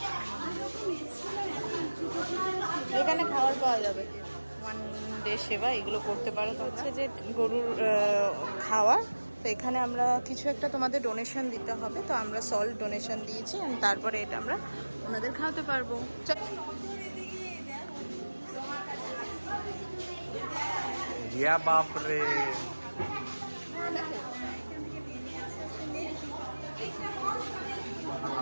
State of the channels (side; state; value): both; inverted; correlation -1.00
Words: এখানে খাবার পাওয়া যাবে, ওয়ান ডে সেবা, এগুলো করতে পারো। তো হচ্ছে যে গরুর খাওয়ার, তো এখানে আমরা কিছু একটা তোমাদের ডোনেশন দিতে হবে, তো আমরা সল্ট ডোনেশন দিয়েছি, and তারপরে এটা আমরা ওনাদের খাওয়াতে পারবো। ইয়া বাপ রে,